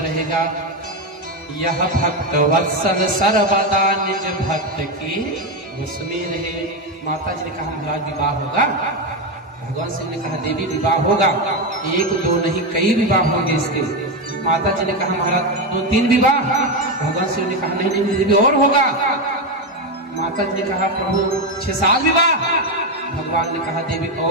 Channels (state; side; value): normal; both; correlation 0.11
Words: रहेगा। यह भक्त वत्सल सर्वदा निज भक्त की बस में रहे। माता जी ने कहा महाराज विवाह होगा। भगवान शिव ने कहा देवी विवाह होगा, एक दो नहीं कई विवाह होंगे इसके। माता जी ने कहा महाराज 2-3 विवाह। भगवान शिव ने कहा नहीं नहीं देवी और होगा। माता जी ने कहा प्रभु 6-7 विवाह। भगवान ने कहा देवी